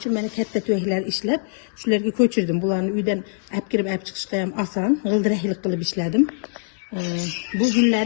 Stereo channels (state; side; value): silent; right; digital silence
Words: uchun men katta tuyaklar ishlab, shularga ko'chirdim. Bularni uydan olib kirib olib chiqishga ham oson, g'ildiraklik qilib ishladim. Bu